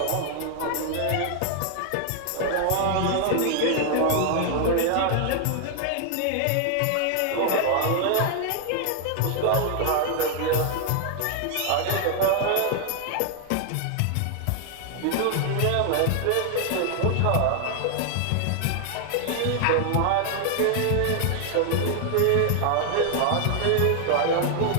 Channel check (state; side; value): different; both; correlation 0.00